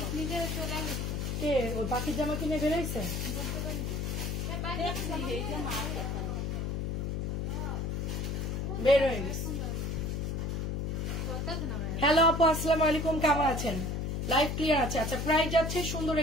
কে ওই পাখির জামা কিনে বেরোইছে? বের হয়ে গেছে। হ্যালো আপু, আসসালামু আলাইকুম, কেমন আছেন? লাইভ ক্লিয়ার আছে? আচ্ছা, প্রাইস যাচ্ছে সুন্দর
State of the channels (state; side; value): noise; left; hum, 1 dB below the sound